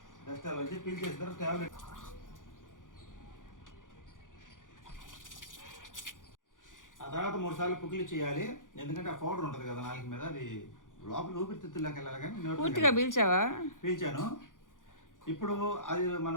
డస్ట్ అలర్జీ పీల్ చేసిన టాబ్లెట్. ఆ తర్వాత 3 సార్లు పుక్కిలి చేయాలి. ఎందుకంటే ఆ పౌడర్ ఉంటుంది కదా నాలుగు మీద, అది లోపల ఊపిరితిత్తుల్లోకి వెళ్ళాలి. కానీ పూర్తిగా పీల్చావా? పీల్చాను. ఇప్పుడు అది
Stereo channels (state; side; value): late; right; 0.88 ms